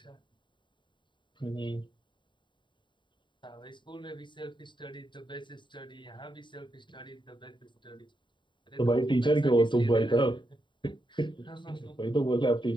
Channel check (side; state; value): right; late; 0.23 ms